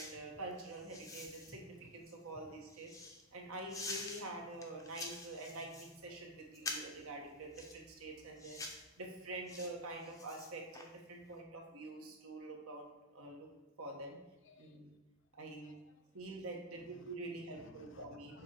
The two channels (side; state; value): both; normal; correlation -0.02